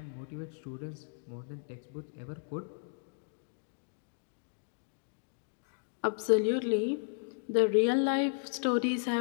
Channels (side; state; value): right; silent; digital silence